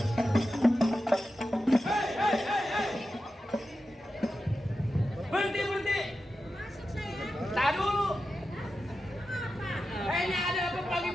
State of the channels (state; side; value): normal; both; correlation 0.91